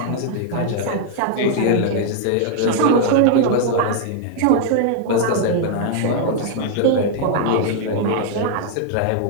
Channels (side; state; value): both; different; correlation 0.00